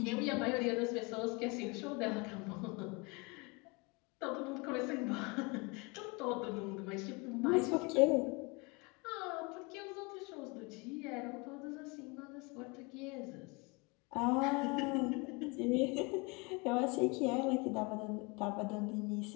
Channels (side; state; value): right; quieter; 28.3 dB